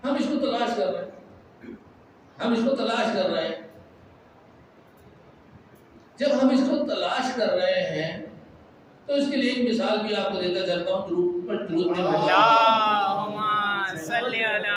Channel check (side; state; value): both; identical; correlation 1.00